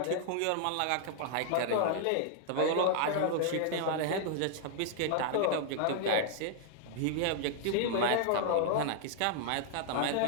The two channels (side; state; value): both; different; correlation 0.00